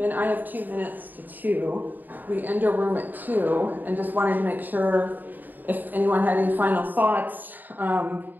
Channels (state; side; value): late; left; 0.087 ms